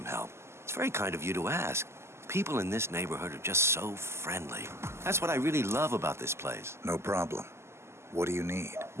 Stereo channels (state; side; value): late; left; 0.13 ms